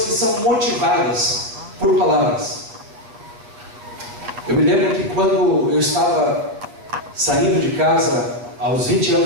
que são motivadas por palavras. Eu me lembro que quando eu estava saindo de casa aos 20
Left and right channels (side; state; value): left; late; 8.7 ms